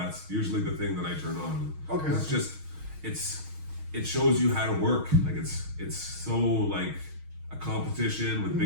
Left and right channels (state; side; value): late; left; 6.3 ms